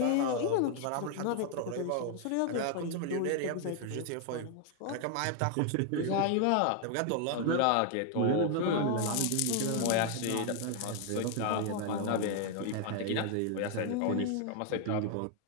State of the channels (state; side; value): different; both; correlation 0.00